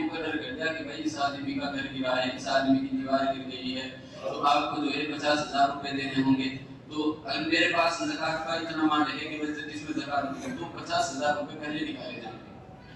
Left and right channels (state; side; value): identical; both; correlation 1.00